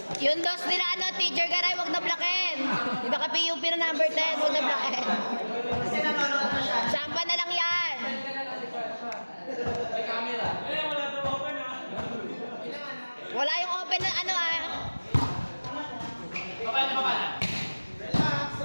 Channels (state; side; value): inverted; both; correlation -1.00